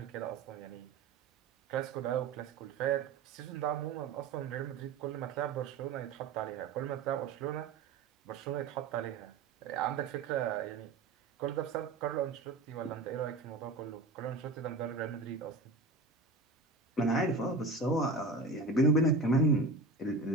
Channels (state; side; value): quieter; left; 3.7 dB